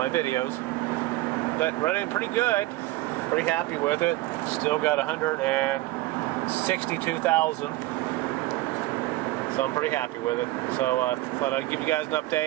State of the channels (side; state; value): left; quieter; 18.0 dB